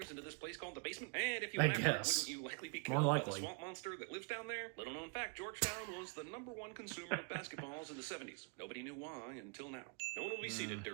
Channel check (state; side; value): quieter; left; 35.1 dB